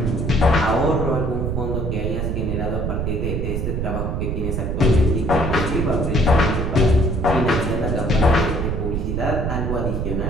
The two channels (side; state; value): right; noise; rumble, 1 dB below the sound